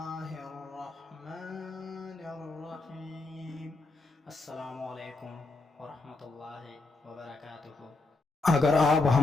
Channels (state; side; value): quieter; right; 3.3 dB